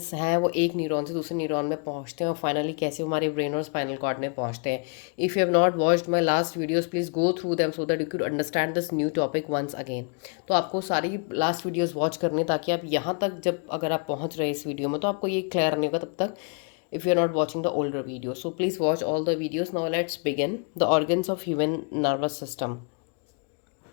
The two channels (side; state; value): right; quieter; 37.1 dB